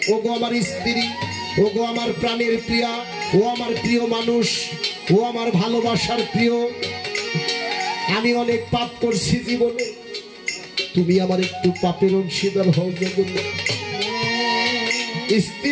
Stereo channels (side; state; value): both; identical; correlation 1.00